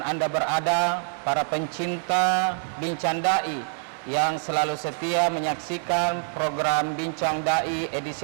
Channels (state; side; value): silent; left; 61 dB below the other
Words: Anda berada, para pencinta Bincang Dai yang selalu setia menyaksikan program Bincang Dai edisi